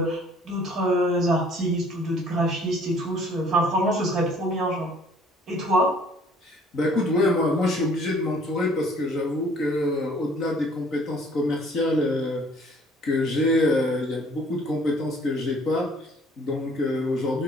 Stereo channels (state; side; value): normal; both; correlation 0.57